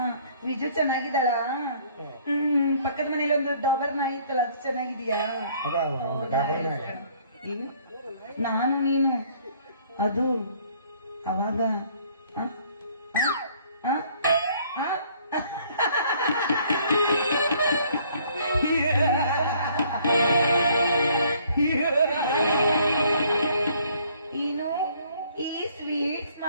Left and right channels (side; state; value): both; inverted; correlation -0.60